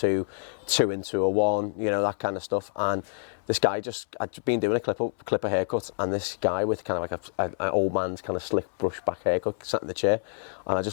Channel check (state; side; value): silent; right; 59 dB below the other